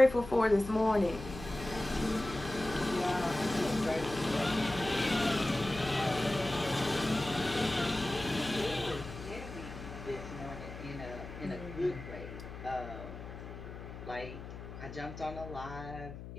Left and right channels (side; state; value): left; noise; hum, 11 dB below the sound